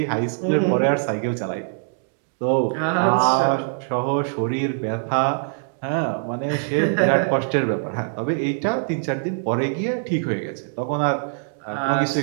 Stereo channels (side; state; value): left; silent; digital silence